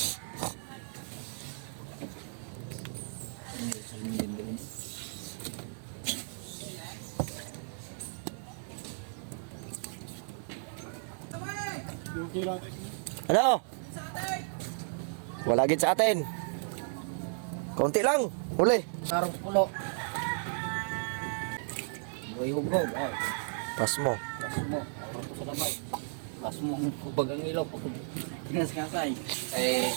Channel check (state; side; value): silent; left; digital silence